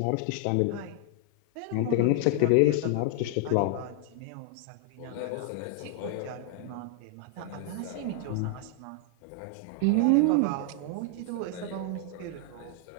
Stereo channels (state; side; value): different; both; correlation 0.00